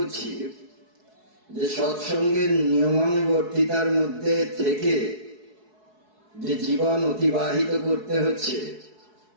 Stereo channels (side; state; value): left; late; 4.7 ms